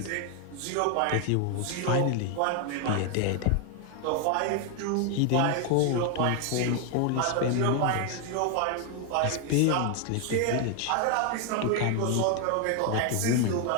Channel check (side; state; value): both; different; correlation 0.01